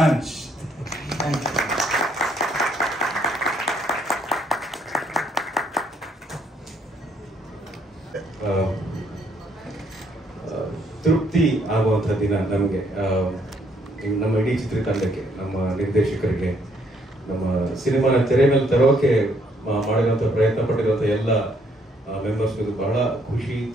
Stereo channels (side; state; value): both; normal; correlation 0.69